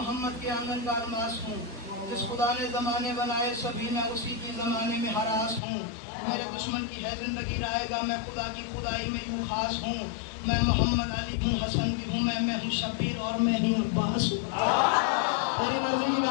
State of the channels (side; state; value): right; drops out; at 5.6 s